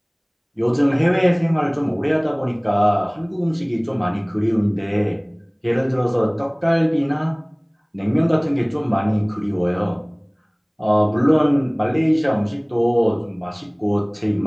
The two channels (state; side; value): identical; both; correlation 1.00